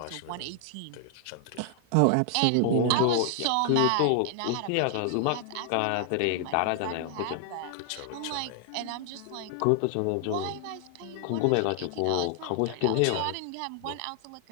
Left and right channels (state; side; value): different; both; correlation 0.00